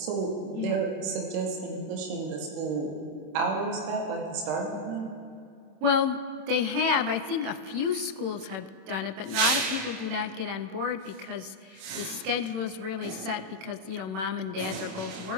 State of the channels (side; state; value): left; late; 26 ms